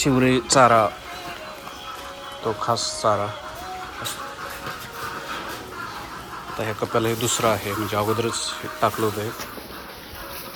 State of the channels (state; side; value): identical; both; correlation 1.00